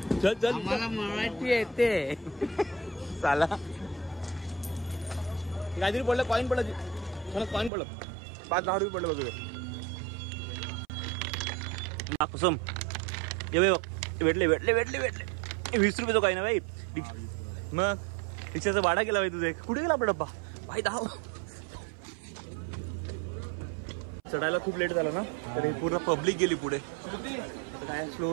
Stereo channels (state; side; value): drops out; left; at 7.7 s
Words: चल चल, आम्हाला मराठी येते. चाला. काहीतरी पडलं, कॉईन पडलं. कॉईन पडलं. 5-10 रुपये पडलं बघ. कुसुम ये भेटले 20 रुपये तो काही ना भाई. मग रिक्षाचा भाडा केला भाई तुझे. कुठे गेला आपला डब्बा भाई? धाव. चढायला खूप लेट झाला ना, तर हे पूर्ण पब्लिक गेली पुढे. काय